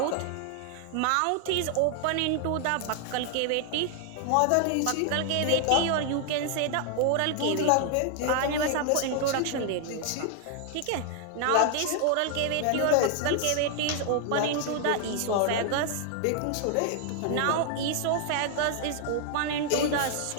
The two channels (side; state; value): both; different; correlation 0.00